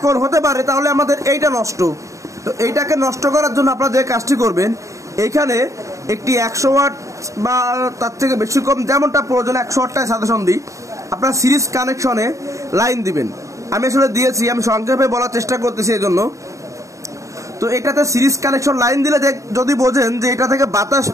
হতে পারে তাহলে আমাদের এইটা নষ্ট। তো এইটাকে নষ্ট করার জন্য আপনারা যে কাজটি করবেন, এইখানে একটি 100 ওয়াট বা তার থেকে বেশি কম যেমনটা প্রয়োজন 100 ওয়াটটায় সাজেশন দিই, আপনার সিরিজ কানেকশনে লাইন দিবেন। আমি আসলে দিয়েছি, আমি সংক্ষেপে বলার চেষ্টা করতেছি এই জন্য। তো এটাতে সিরিজ কানেকশন লাইন দিলে যদি বোঝেন যে এটা থেকে বাতাস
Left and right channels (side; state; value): left; late; 0.15 ms